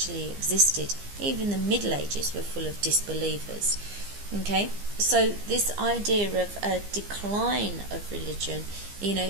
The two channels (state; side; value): late; left; 15 ms